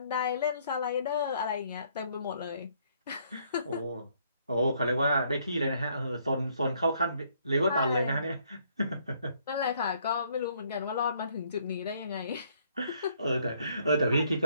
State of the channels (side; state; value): both; inverted; correlation -0.67